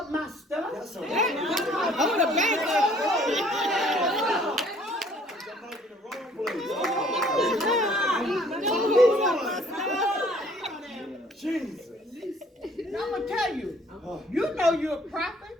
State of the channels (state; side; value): normal; both; correlation 0.58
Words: my stuff. That's a word. Hold the bank The mic in the wrong place. Jesus. I'm going to tell you, you know you're a